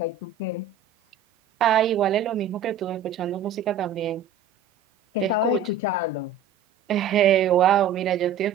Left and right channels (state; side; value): quieter; left; 6.5 dB